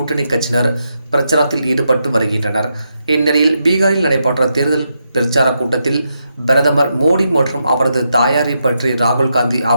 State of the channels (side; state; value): both; inverted; correlation -0.83